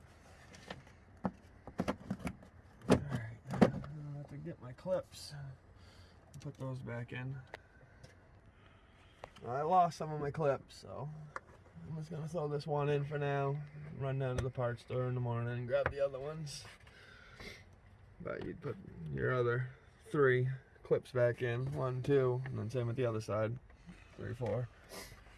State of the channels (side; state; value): both; identical; correlation 1.00